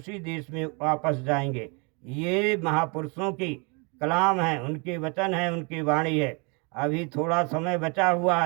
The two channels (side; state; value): left; quieter; 32.3 dB